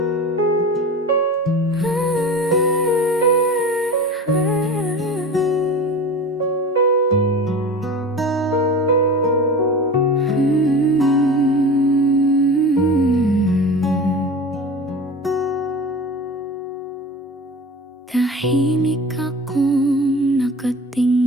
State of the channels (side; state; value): both; normal; correlation 0.34